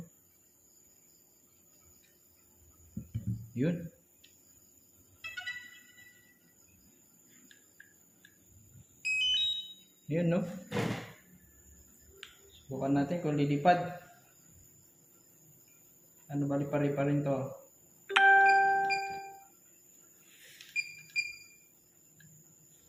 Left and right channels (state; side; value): identical; both; correlation 1.00